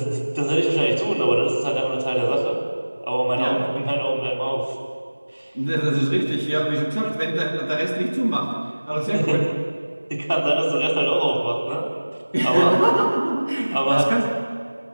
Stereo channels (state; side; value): inverted; both; correlation -1.00